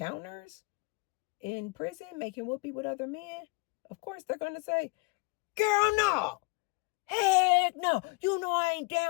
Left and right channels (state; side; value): quieter; right; 28.1 dB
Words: in prison making whoopee with other men? Of course they're going to say, girl, no. Heck no. You know I ain't